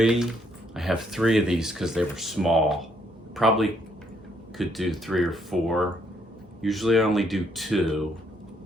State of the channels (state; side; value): normal; both; correlation 0.71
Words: I have 3 of these because they were small. Probably could do 3 or 4. Usually I only do 2